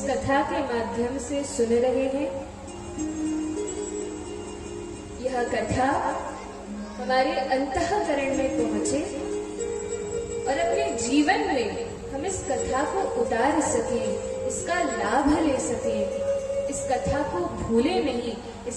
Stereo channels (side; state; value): both; identical; correlation 1.00